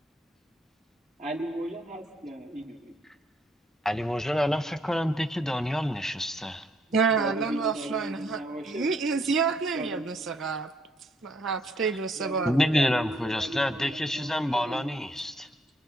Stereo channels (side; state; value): both; normal; correlation 0.69